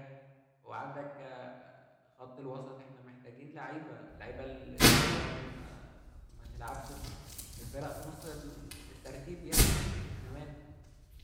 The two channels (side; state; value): both; identical; correlation 1.00